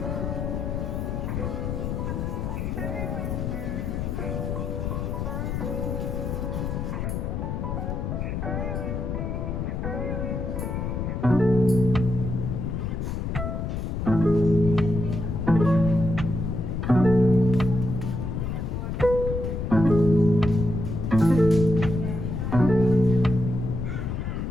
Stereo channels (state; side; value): noise; left; rumble, 2 dB below the sound